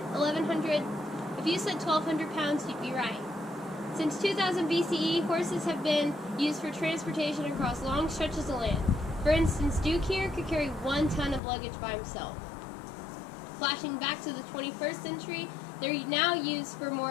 If you said 1,200 pounds, you'd be right. Since 2000 BCE, horses have been used for transportation across long stretches of land. For instance, Duke here could carry 1 ton of luggage by himself. Flashing back to the 21st century, they're now used for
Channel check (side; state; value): right; drops out; at 11.4 s